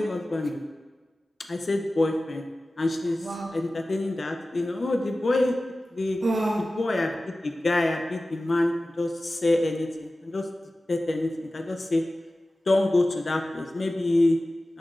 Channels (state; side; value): normal; both; correlation 0.96